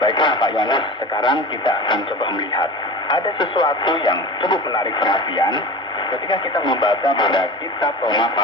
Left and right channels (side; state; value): both; normal; correlation 0.32